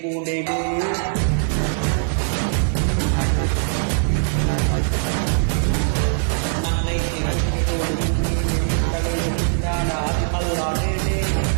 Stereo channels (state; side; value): silent; left; 65 dB below the other